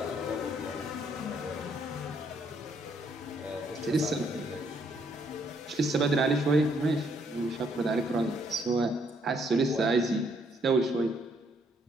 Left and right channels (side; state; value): both; normal; correlation 0.70